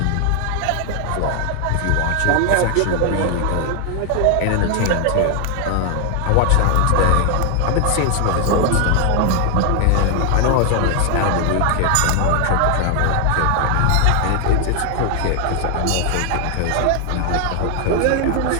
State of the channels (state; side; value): different; both; correlation 0.00